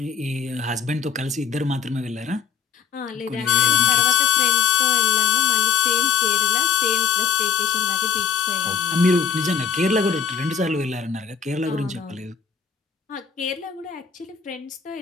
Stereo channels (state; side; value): quieter; right; 6.6 dB